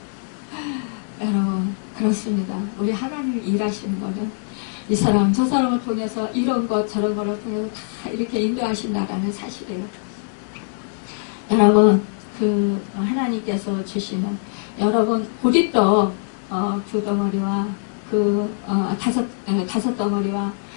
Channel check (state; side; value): silent; right; digital silence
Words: 여러분 그렇습니다. 우리 하나님이 일하시는 거는 이 사람 저 사람을 통해서 이런 것 저런 거를 통해서 다 이렇게 인도하신다라는 사실이에요. 여러분 그 하나님께서 주시는 여러분 보리떡 2덩어리와 그 5덩어리와